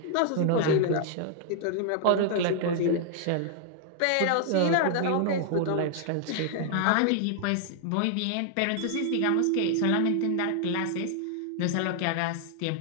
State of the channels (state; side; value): different; both; correlation 0.00